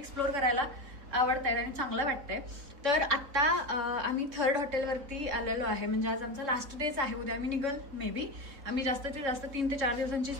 करायला आवडत आहेत आणि चांगलं वाटतंय. तर आता आम्ही थर्ड हॉटेलवरती आलेलो आहे. म्हणजे आज आमचा लास्ट डेच आहे. उद्या आम्ही निघल मे बी. आम्ही जास्तीत जास्त 3 ते 4 दिवसांची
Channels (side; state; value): left; late; 3.9 ms